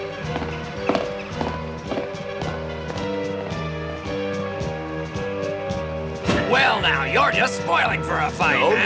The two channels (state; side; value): identical; both; correlation 1.00